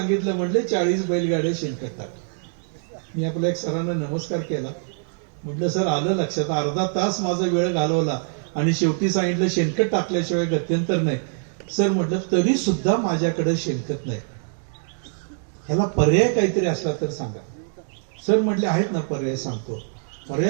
म्हटले 40 बैलगाड्या शेणखत टाक. मी आपल्या एक सरांना नमस्कार केला. म्हटलं सर आलं लक्षात. अर्धा तास माझा वेळ घालवला आणि शेवटी सांगितलं शेणखत टाकल्याशिवाय गत्यंतर नाही. सर म्हटलं तरी सुद्धा माझ्याकडे शेणखत नाही, ह्याला पर्याय काहीतरी असला तर सांगा. सर म्हटले आहेत ना पर्याय सांगतो.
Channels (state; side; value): silent; left; digital silence